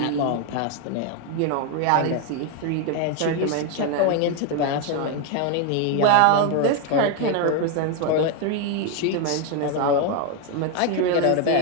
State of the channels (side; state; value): both; different; correlation 0.01